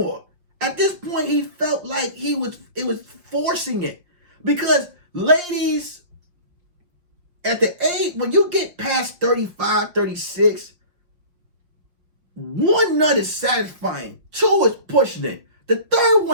At this point, he felt like it was forcing it. Because ladies, at the age, when you get past 35, 36, 1 nut is satisfying. 2 is pushing it. The 3rd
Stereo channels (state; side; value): late; left; 5.3 ms